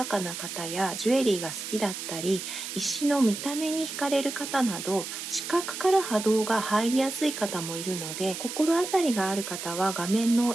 かな方やジュエリーが好きだったり、石の見た目に惹かれる方など、視覚から波動が入りやすい方もいるので、心当たりがある方は画面の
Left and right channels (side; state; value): right; noise; hiss, 7 dB below the sound